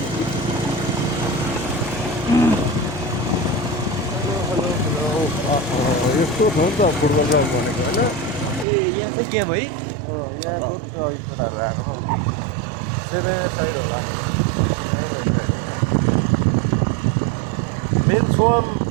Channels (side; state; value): left; drops out; at 8.7 s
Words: यस्तो छ नि त फुटबल ग्राउन्ड भनेको होइन ए यहाँ चाहिँ गेम है मेन्स वन